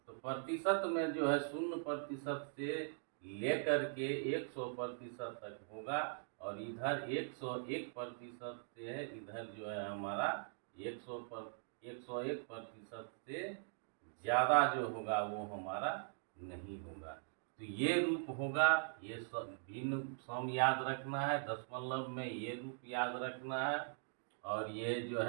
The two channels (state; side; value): silent; left; digital silence